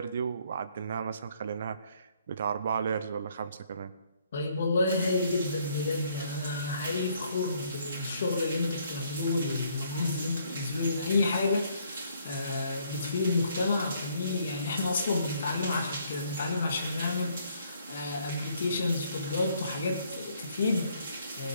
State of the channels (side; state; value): both; inverted; correlation -0.66